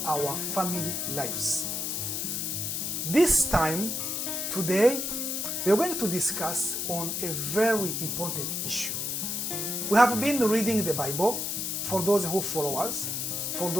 our family lives. This time, today, we are going to discuss on a very important issue. We have been reading the Bible for those who follow us, for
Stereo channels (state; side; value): noise; left; hiss, 2 dB below the sound